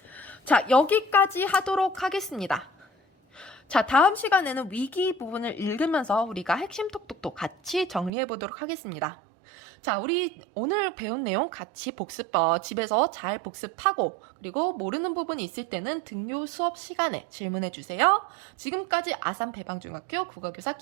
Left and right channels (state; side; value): drops out; left; at 8.1 s